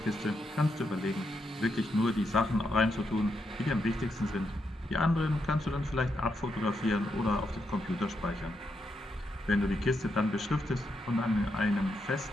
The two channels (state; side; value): normal; both; correlation 0.82